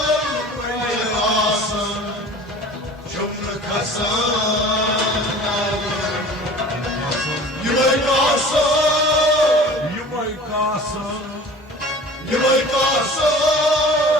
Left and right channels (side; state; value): both; normal; correlation 0.42